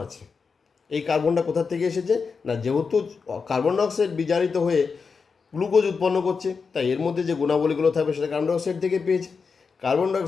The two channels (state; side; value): quieter; right; 5.2 dB